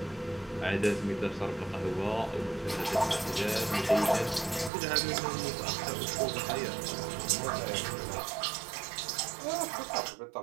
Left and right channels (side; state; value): left; drops out; at 4.7 s